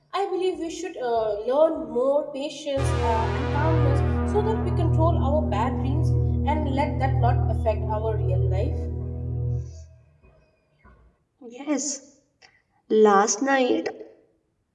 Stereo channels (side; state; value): both; identical; correlation 1.00